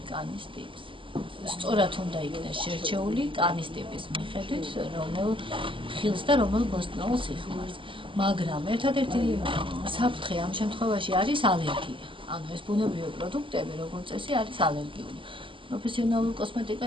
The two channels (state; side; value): late; left; 0.25 ms